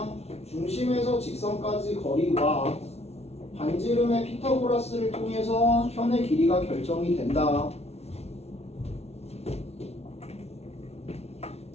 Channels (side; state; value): right; late; 0.31 ms